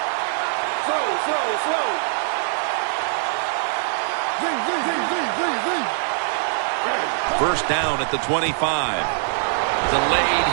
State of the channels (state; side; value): silent; left; 64 dB below the other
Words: First down at the 25. Delayed